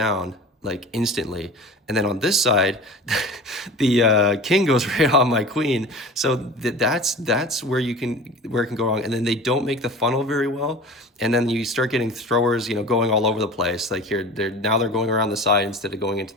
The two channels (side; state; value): both; normal; correlation 0.37